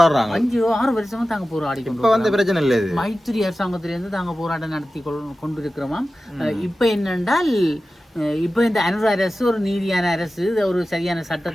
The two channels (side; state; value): both; normal; correlation 0.94